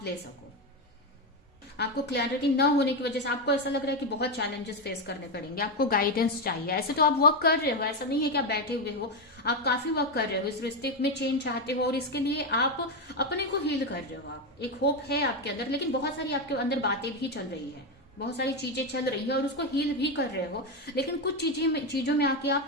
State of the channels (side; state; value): both; normal; correlation 0.09